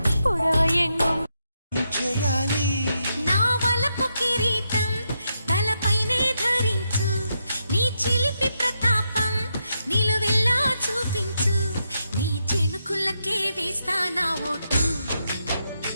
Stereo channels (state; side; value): inverted; both; correlation -0.82